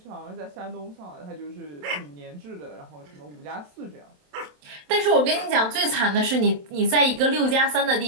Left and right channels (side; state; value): left; late; 27 ms